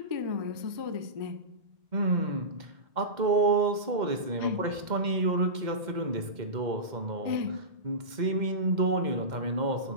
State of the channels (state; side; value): late; left; 2.1 ms